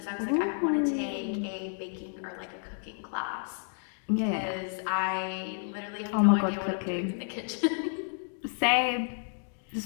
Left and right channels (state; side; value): silent; right; 57 dB below the other